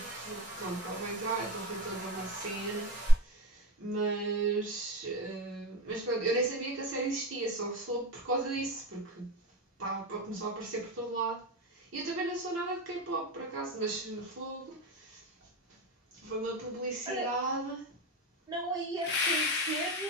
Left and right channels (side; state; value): both; normal; correlation 0.23